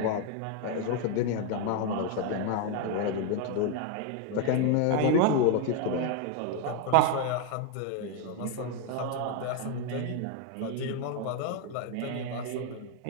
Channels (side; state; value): both; different; correlation 0.01